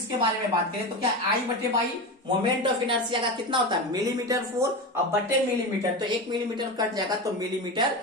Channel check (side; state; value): both; normal; correlation 0.22